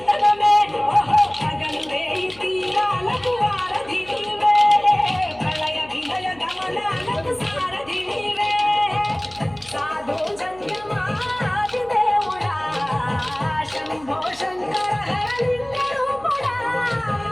ఓహో పగలు వేయి తీరాలకు వారధి నీవే ప్రళయ విలయ గమనాలకు సారథి నీవే సాధు జంగమాది దేవుడా శంభో శంకర హరలింగ రూపుడా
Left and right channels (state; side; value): noise; left; hum, 23 dB below the sound